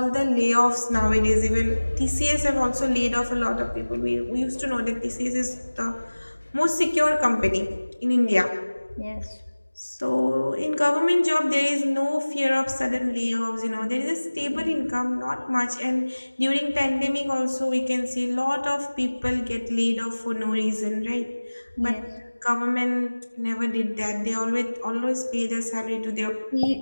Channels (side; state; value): both; inverted; correlation -1.00